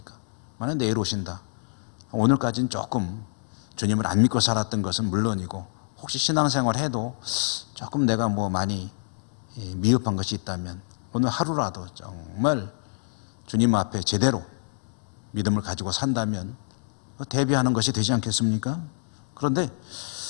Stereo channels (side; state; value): right; silent; digital silence